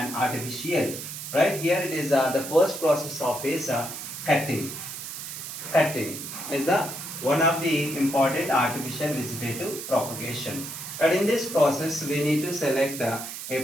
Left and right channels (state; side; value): noise; right; hiss, 8 dB below the sound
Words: artificial. Right here it is the first process of is cutting. Cutting is the one of the important artificial vegetative propagation. But in this process, we need to select a